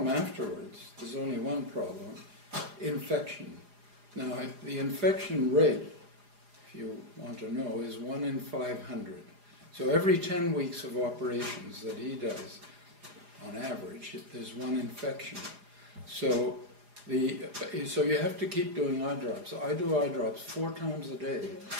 afterwards, there's only one problem, infection. Now the infection rate, if you want to know, is 1 in 500. So every 10 weeks of operations that he does, on average, there's 1 infection. So you have to keep doing eye drops. I do eye drops 4 times a day,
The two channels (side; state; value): left; late; 4.9 ms